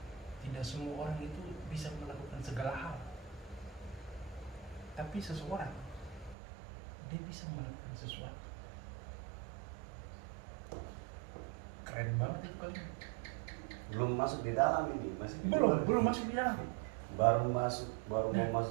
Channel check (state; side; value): drops out; left; at 6.4 s